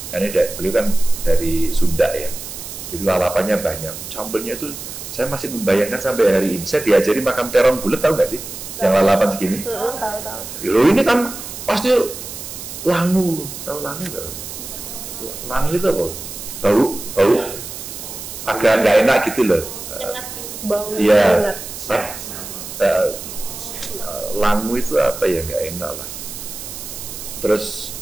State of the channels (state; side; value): noise; right; hiss, 10 dB below the sound